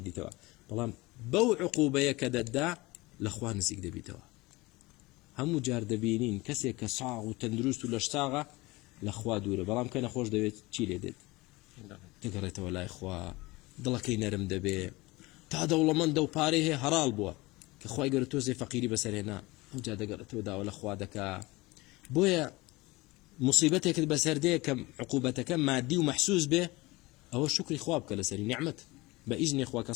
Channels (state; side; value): quieter; right; 21.9 dB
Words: بەڵام بەو عقوبەیە کە دەتدا لە خوا نزیک دەبیتەوە هەموو جار دەبینین کەسێک کە ساغ و تەندروست و لەش ساغە لە خوا دوورە بەڵام کە نەخۆش دەوێت چی لێ دێت دەگەڕێتەوە لای خوا دڵەکەی نەرم دەبێ تا دەوڵەمەندە و پارەی هەیە هەراڵ بووە کە خوای گەورە تۆزێ فەقیری بەسەرهێنا ئەوجا دەگەڕێتەوە داوە لە خوا دەکا بۆیە مصیبەتێکت بەسەردەیە کە عقوبەتەکە مادی و مەحسوس بێ ئەوە شکری خوا بکە لەسەری نیعمەت بە ئیزنی خوا کە